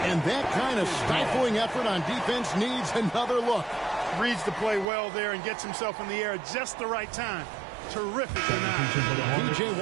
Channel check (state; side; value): drops out; left; at 4.9 s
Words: And that kind of stifling effort on defense needs another look. Reads the play well there and gets himself in the air at just the right time. Terrific denial. P.J.